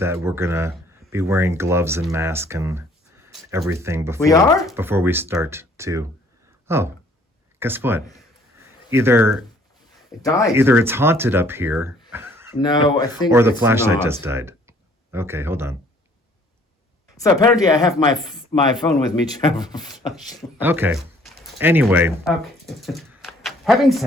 we're gonna be wearing gloves and mask and everything before we start to. Oh, guess what? Either it died. Either it's haunted up here. No, I think. Or the it's flashlight not. just died. Okay, hold on. So apparently, I have my phone with me to have a flashlight. Okay. Anyway. Okay. Having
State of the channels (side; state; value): both; normal; correlation 0.59